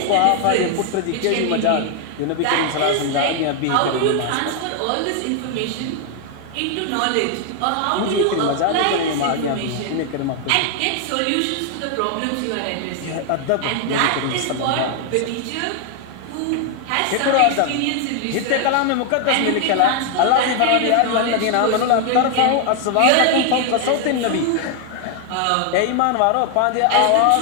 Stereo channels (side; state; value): both; different; correlation 0.00